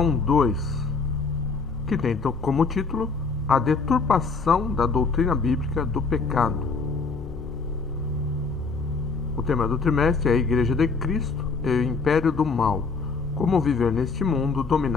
2, que tem como título A Deturpação da Doutrina Bíblica do Pecado. O tema do trimestre é a Igreja de Cristo e o Império do Mal, como viver neste mundo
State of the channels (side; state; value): right; quieter; 4.5 dB